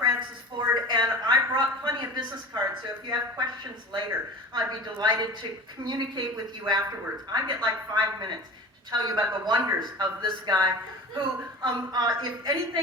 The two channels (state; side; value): normal; both; correlation 0.37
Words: Ford, and I brought plenty of business cards, so if you have questions later, I'd be delighted to communicate with you afterwards. I get like 5 minutes to tell you about the wonders of this guy who, if